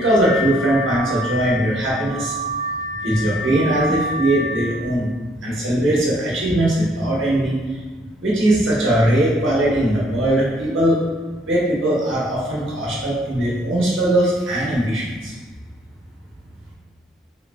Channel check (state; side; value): normal; both; correlation 0.65